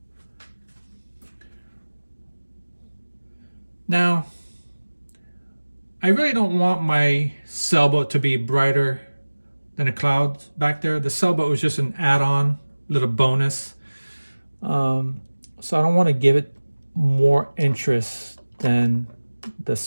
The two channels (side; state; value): both; inverted; correlation -1.00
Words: Now, I really don't want my sailboat to be brighter than the clouds back there. The sailboat was just an add-on, little bonus. So I don't want to give it more interest than the